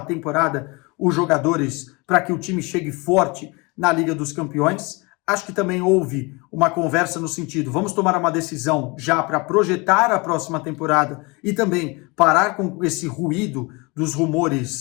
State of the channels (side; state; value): right; quieter; 27.1 dB